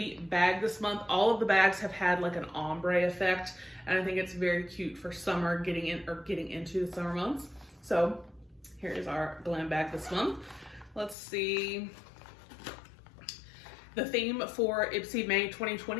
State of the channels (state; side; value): drops out; right; at 11.2 s